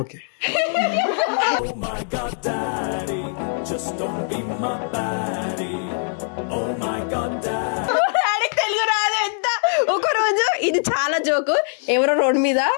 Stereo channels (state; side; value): silent; right; 63 dB below the other